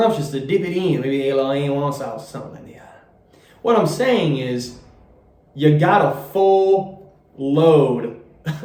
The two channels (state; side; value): identical; both; correlation 1.00